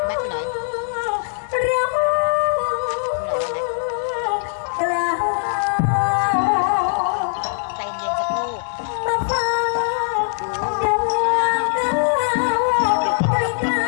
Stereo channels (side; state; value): right; silent; digital silence